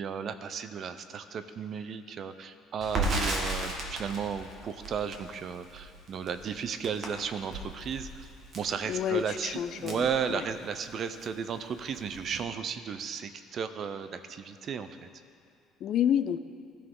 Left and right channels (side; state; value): both; normal; correlation 0.57